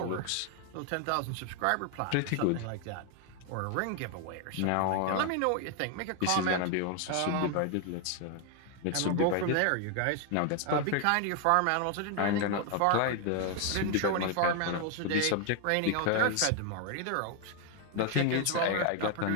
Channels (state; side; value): different; both; correlation 0.01